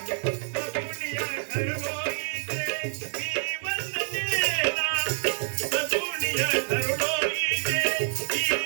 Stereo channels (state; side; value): silent; left; 60 dB below the other